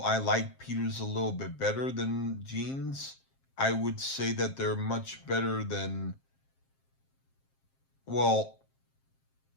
like Peter's a little bit better than Gene's. I would say that they're much better than, well,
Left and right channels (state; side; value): late; right; 7.5 ms